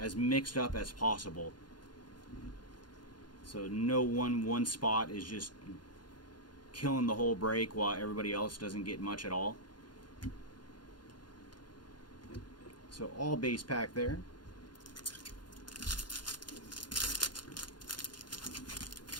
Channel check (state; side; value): late; right; 0.71 ms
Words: mixed up as possible. So no one spot is just killing the whole break while everybody else doesn't get much at all. So all base pack there.